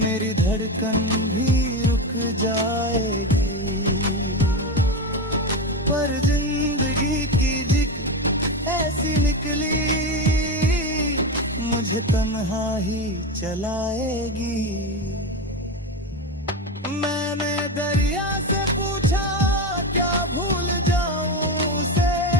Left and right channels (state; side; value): normal; both; correlation 0.17